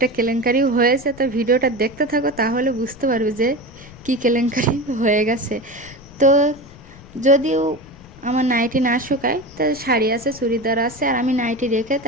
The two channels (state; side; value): noise; left; rumble, 21 dB below the sound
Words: কেলেঙ্কারিও হয়েছে, তো ভিডিওটা দেখতে থাকো তাহলে বুঝতে পারবে যে কি কেলেঙ্কারি হয়ে গেছে। তো যদিও আমার নাইটি না শুকায়, তা শাড়ি আছে, চুড়িদার আছে, আর আমি নাইটি রেখে